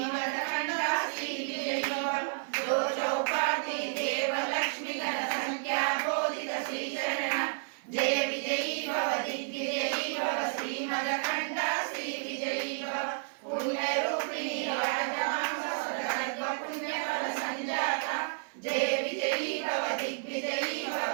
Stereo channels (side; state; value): left; silent; 57 dB below the other